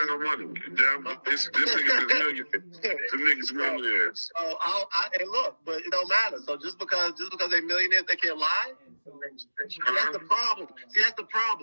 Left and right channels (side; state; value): both; inverted; correlation -1.00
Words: no money. Damn, this niggas is millionaires. Them niggas millionaires. So and look, but it don't matter. So just because they're millionaires, they can't lie. See, that's the